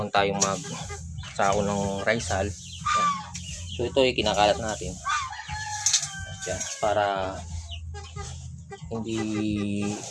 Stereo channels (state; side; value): identical; both; correlation 1.00